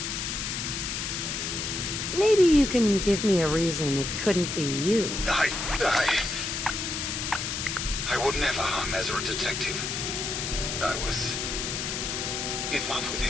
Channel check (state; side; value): noise; left; hiss, 3 dB below the sound